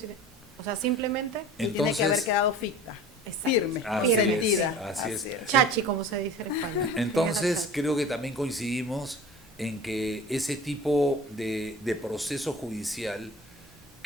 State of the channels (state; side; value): normal; both; correlation 0.39